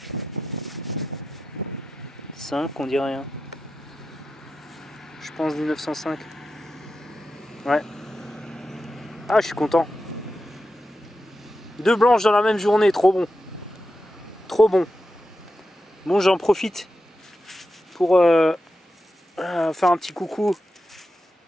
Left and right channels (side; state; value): both; normal; correlation 0.90